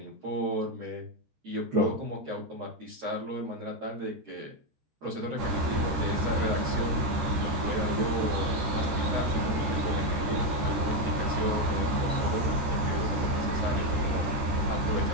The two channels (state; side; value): late; left; 14 ms